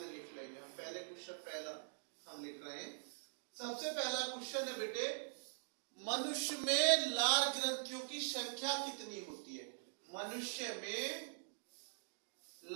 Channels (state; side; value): silent; left; digital silence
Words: लिख लेंगे हम। पहले क्वेश्चन पहला हम लिख रहे हैं। सबसे पहला क्वेश्चन है बेटे मनुष्य में लार ग्रंथियों की संख्या कितनी होती है? मनुष्य में